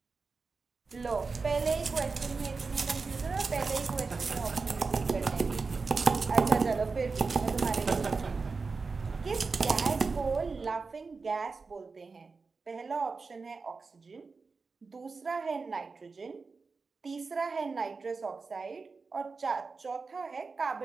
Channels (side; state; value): left; quieter; 4.4 dB